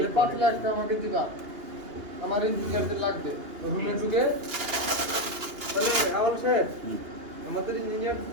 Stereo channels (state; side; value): late; left; 2.8 ms